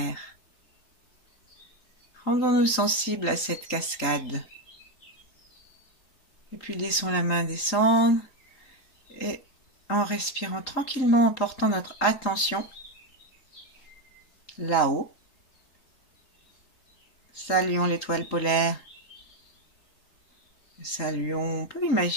Rendons-nous sensibles à cette cascade. Et puis laissons la main descendre et en respirant tranquillement, en portant notre attention là-haut. Saluons l'étoile polaire. Saluons, on peut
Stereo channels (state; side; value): late; right; 3.9 ms